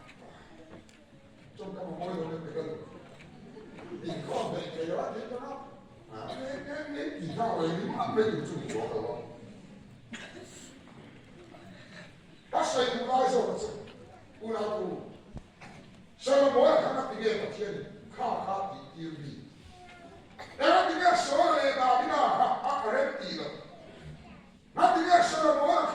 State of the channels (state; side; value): identical; both; correlation 1.00